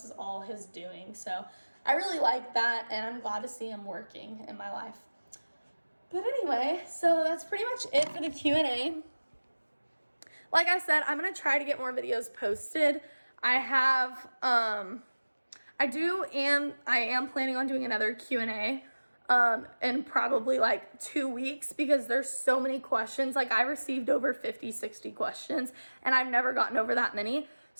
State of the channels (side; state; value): both; inverted; correlation -1.00